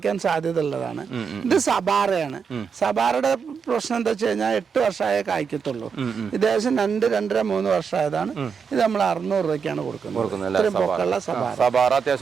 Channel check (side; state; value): left; quieter; 6.2 dB